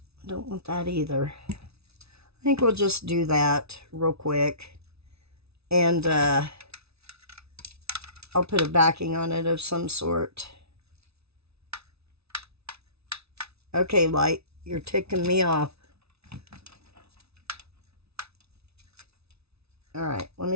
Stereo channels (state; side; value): late; left; 0.79 ms